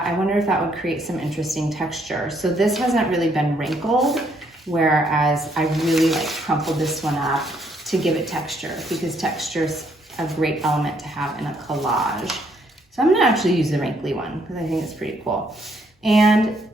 I wonder if that would create some interesting texture. So this hasn't really been wrinkled, whereas I really crumpled this one up to give it texture, because texture's a great element to have in a collage. So I'm gonna actually use the wrinkly one because I think it's pretty cool. And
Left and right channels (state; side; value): normal; both; correlation 0.70